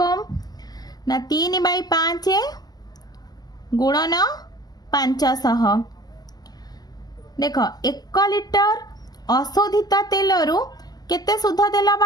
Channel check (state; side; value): late; right; 0.19 ms